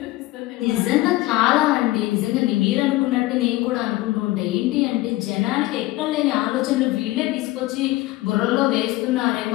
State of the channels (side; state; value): right; quieter; 18.3 dB